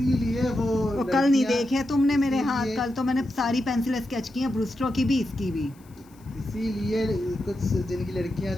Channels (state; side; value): noise; left; hiss, 30 dB below the sound